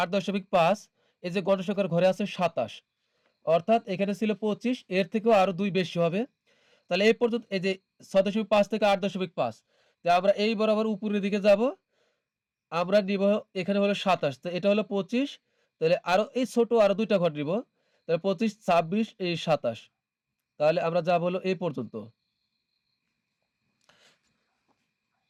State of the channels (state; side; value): identical; both; correlation 1.00